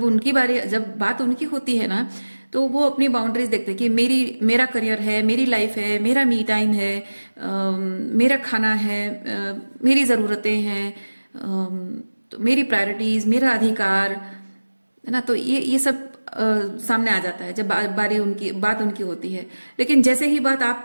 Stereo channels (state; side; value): inverted; both; correlation -1.00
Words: बात उनकी होती है ना, तो वो अपनी बाउंड्रीज देखते हैं कि मेरा करियर है, मेरी लाइफ है, मेरा मी टाइम है, मेरा खाना है, मेरी ज़रूरतें हैं, तो मेरी प्रायोरिटीज़, मेरा अधिकार है ना। तो ये सब सामने आ जाता है जब बात उनकी होती है। लेकिन जैसे ही बात आप